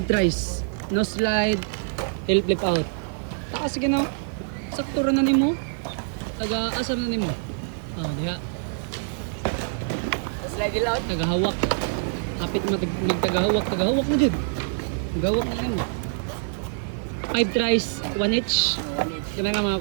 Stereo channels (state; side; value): silent; left; 59 dB below the other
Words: tries. No slide. Tail flip out. Taas sige na. Sakto ra na nimo. Taga asa na nimo. Oh, diha. Slide it out. Tagahawak. Hapit magtagahawak. Tagahawak na jud. Tagahawak na nimo. 5 tries, 1 each. Ganahan ka mga